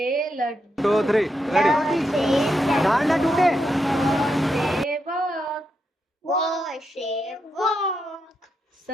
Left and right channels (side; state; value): both; normal; correlation 0.83